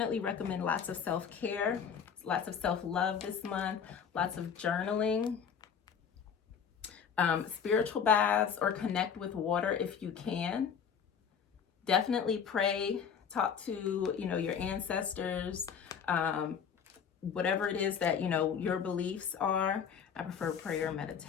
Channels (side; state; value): right; quieter; 7.2 dB